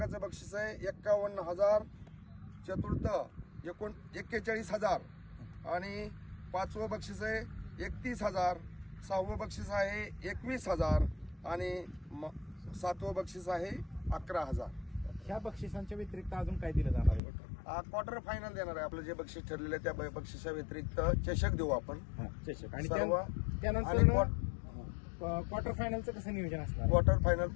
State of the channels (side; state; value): right; drops out; at 17.2 s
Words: बक्षीस आहे 51,000. चतुर्थ 41,000 आणि पाचवं बक्षीस आहे 31,000. सहावं बक्षीस आहे 21,000 आणि सातवं बक्षीस आहे 11,000. ह्या बक्षिसांच्या व्यतिरिक्त अजून काय दिलं जाणार आहे? क्वार्टर फायनल देणार आहे. आपलं जे बक्षीस ठरलेलं आहे त्या बक्षिसा व्यतिरिक्त चषक देऊ आपण. चषक. आणि सर्व त्यानंतर क्वार्टर फायनलचं कसं नियोजन असणार? क्वार्टर फायनल